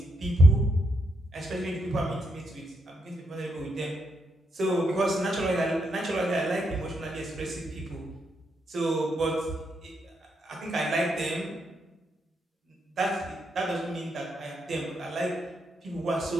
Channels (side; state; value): both; normal; correlation 0.79